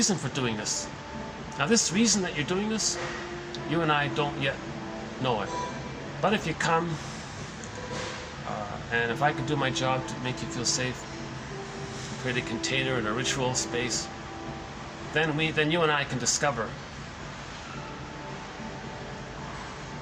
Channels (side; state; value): both; identical; correlation 1.00